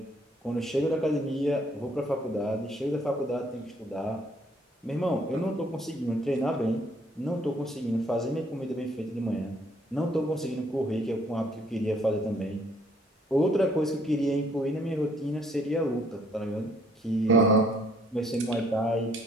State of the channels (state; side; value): normal; both; correlation 0.65